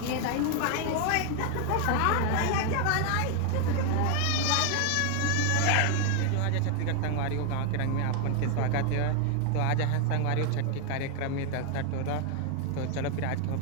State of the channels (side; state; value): both; different; correlation 0.01